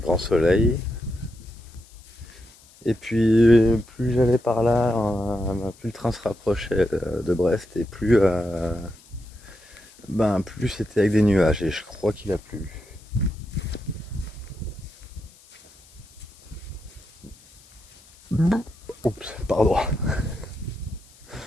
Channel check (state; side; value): noise; left; hiss, 26 dB below the sound